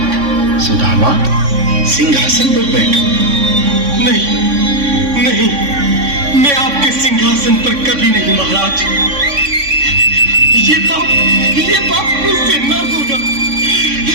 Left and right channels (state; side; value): late; left; 3.6 ms